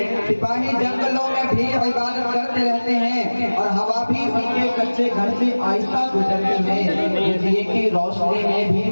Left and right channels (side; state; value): both; inverted; correlation -1.00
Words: सिपाही जंगलों में भी इबादत करते रहते हैं और हवा भी उनके कच्चे घर से आहिस्ता गुजरती है। दुनिया की रोशनी में भी